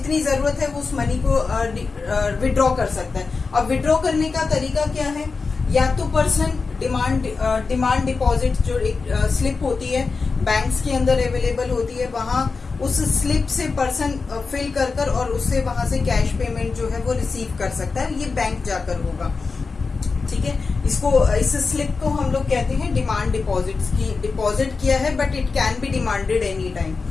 जरूरत है वो उस मनी को विड्रॉ कर सकता है। अब विड्रॉ करने का तरीका क्या है, या तो पर्सन डिमांड डिपॉजिट जो एक स्लिप होती है बैंक्स के अंदर अवेलेबल होती है, वहां उस स्लिप से पर्सन फिल कर और उससे वहां से कैश पेमेंट जो है वो रिसीव कर सकता है, ये बैंक जाकर होगा। ठीक है, इस स्लिप को हम लोग कहते हैं डिमांड डिपॉजिट्स की, डिपॉजिट किया है but it can be demanded any time.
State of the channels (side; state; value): right; quieter; 4.5 dB